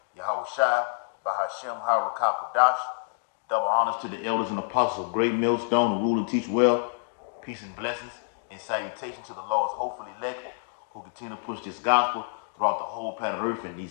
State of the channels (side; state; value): right; silent; digital silence